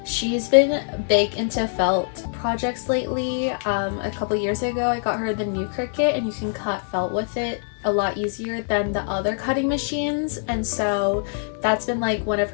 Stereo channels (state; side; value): silent; right; 55 dB below the other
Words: She's been big into felt projects lately. A couple years ago I got her the new Cricut, and you can cut felt with it a lot easier than the other cutting machines, and so that's been like one of